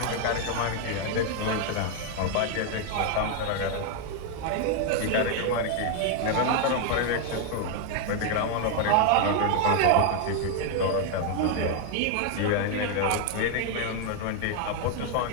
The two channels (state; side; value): different; both; correlation 0.00